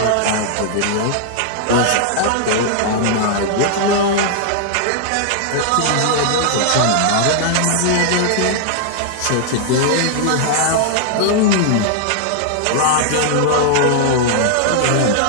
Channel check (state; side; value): different; both; correlation -0.01